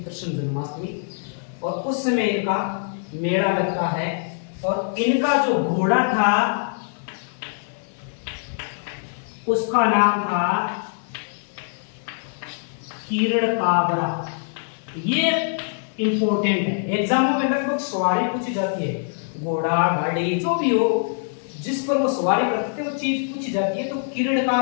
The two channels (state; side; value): silent; right; digital silence